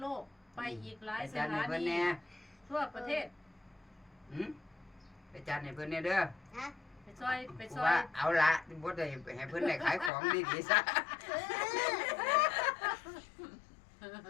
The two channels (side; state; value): right; drops out; at 10.1 s